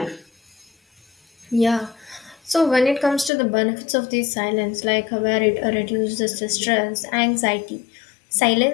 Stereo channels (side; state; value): right; drops out; at 3.3 s